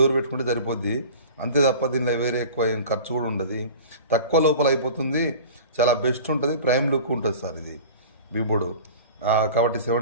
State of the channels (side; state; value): both; inverted; correlation -0.39